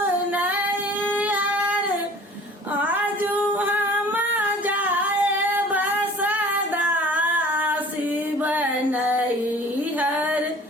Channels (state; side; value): normal; both; correlation 0.47